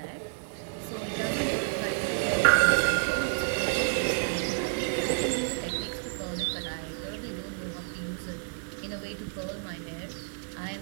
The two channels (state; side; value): silent; left; digital silence